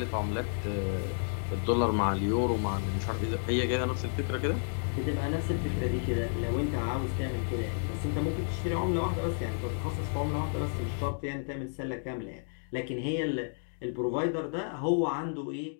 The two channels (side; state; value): right; silent; digital silence